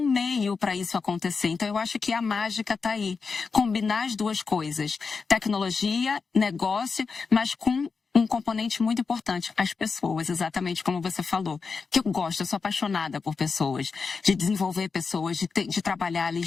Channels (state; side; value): quieter; right; 4.9 dB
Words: meio para isso acontecer. Então, eu acho que a mágica está aí. Combinar as duas coisas. Tecnologia, negócio, mas com um componente muito importante, as pessoas, exatamente como você falou. Que eu gosto, eu sou apaixonada por pessoas, de desenvolver pessoas, de trabalhar ali